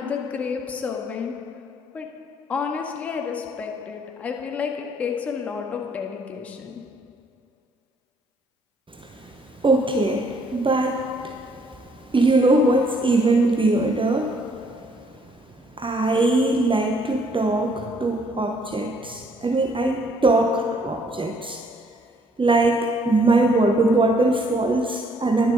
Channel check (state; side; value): normal; both; correlation 0.65